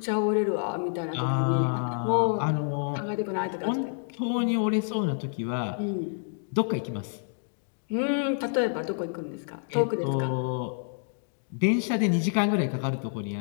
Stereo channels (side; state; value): right; silent; digital silence